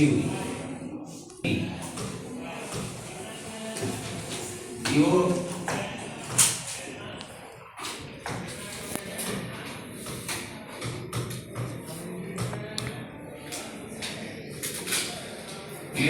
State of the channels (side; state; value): both; identical; correlation 1.00